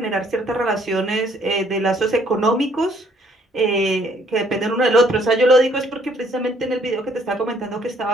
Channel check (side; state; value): both; normal; correlation 0.64